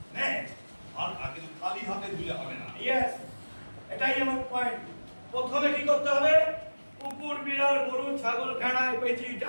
আর আগে খালি হাতে ধুলে হবে না। ইয়েস, এটাই আমার পয়েন্ট। প্রথমে কি করতে হবে? কুকুর, বিড়াল, গরু, ছাগল, ভেড়া, পেঁচি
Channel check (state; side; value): inverted; both; correlation -1.00